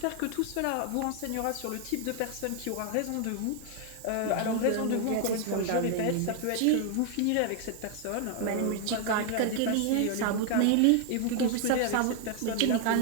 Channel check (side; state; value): both; different; correlation 0.00